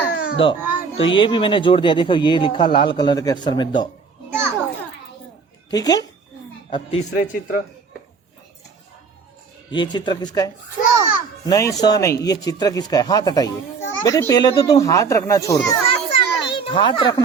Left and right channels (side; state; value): left; quieter; 5.3 dB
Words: दो। तो ये भी मैंने जोड़ दिया, देखो ये लिखा लाल कलर के अक्षर में दो, ठीक है। अब तीसरे चित्र, ये चित्र किसका है? नहीं, स नहीं, ये चित्र किसका है? हाथ हटाइए बेटे, पहले तो तुम हाथ रखना छोड़ दो, हाथ